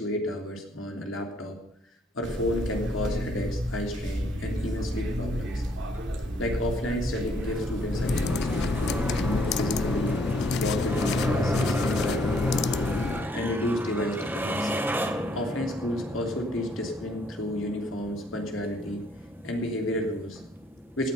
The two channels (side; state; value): both; normal; correlation 0.66